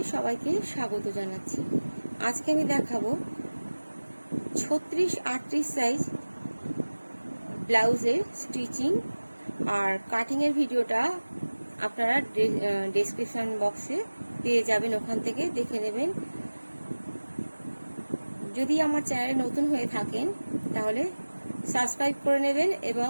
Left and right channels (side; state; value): both; inverted; correlation -1.00